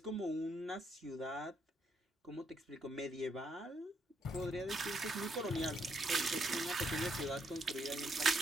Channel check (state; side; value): normal; both; correlation 0.75